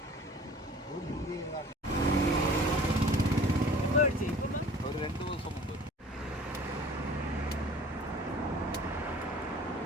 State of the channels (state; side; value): normal; both; correlation 0.47